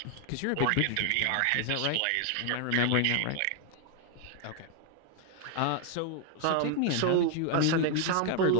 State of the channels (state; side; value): different; both; correlation 0.00